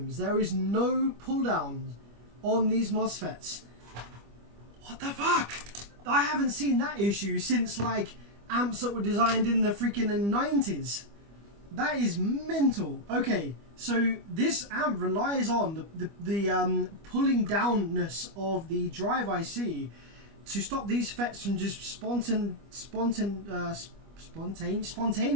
There is no pull down on these MOSFETs. What the fuck? I haven't seen that issue since like amps that were designed in the freaking 90s. That is mental. Okay, so this amp relies on the pulling downness of the drive IC to stop these FETs from just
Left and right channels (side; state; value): left; late; 25 ms